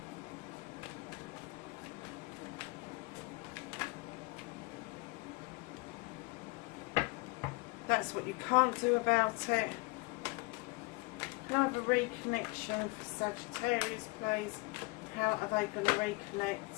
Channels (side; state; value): right; quieter; 25.3 dB